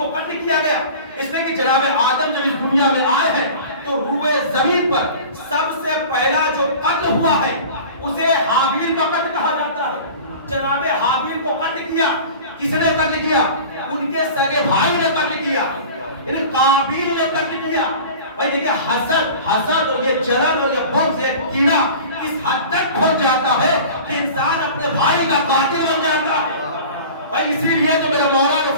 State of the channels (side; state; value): both; inverted; correlation -0.39